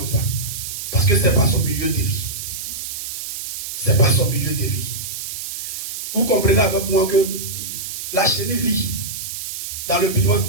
ça. Parce que ce n'est pas son milieu de vie. Ce n'est pas son milieu de vie. Vous comprenez avec moi que la chenille vit dans le piment.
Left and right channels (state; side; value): noise; right; hiss, 6 dB below the sound